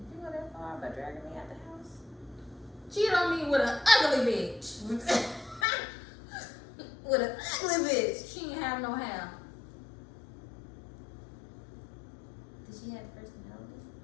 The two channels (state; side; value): drops out; right; at 5.7 s